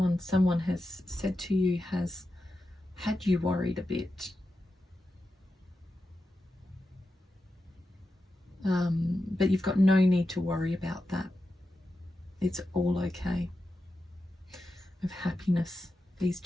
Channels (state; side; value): normal; both; correlation 0.90